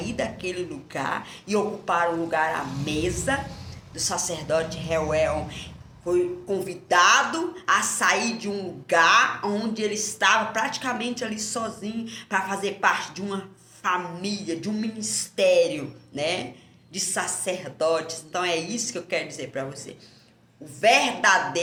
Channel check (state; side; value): identical; both; correlation 1.00